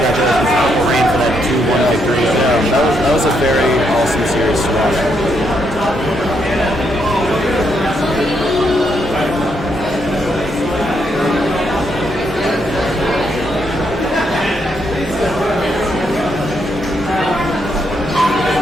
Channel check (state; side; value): normal; both; correlation 0.77